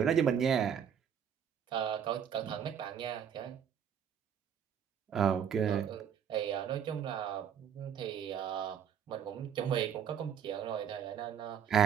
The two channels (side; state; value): left; quieter; 8.3 dB